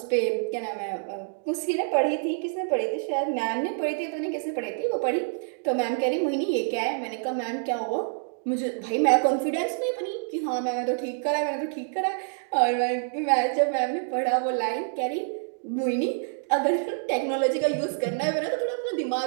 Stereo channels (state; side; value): silent; left; digital silence